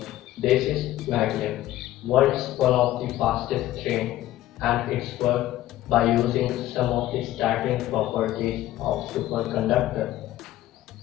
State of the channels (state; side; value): quieter; right; 14.7 dB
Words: this is Magnet. World's one of the fastest train and it's worked by using some of the starting properties of superconductor.